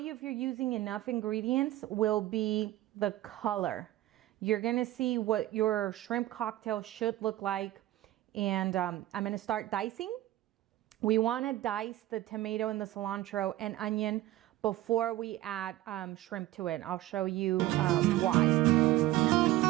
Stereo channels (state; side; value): quieter; left; 15.5 dB